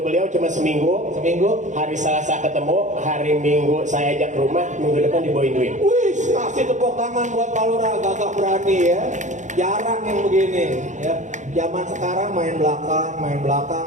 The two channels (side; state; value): left; late; 0.35 ms